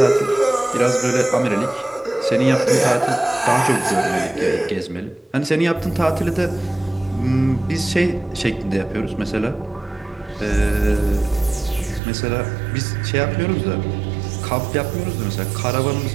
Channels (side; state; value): left; drops out; at 12.0 s